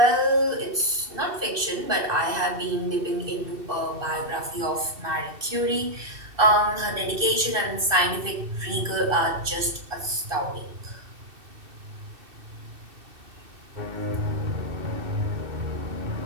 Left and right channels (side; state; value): left; late; 2.7 ms